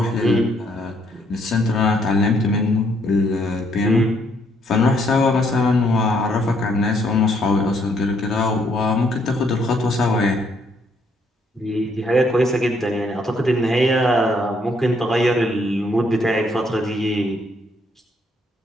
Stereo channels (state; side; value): normal; both; correlation 0.70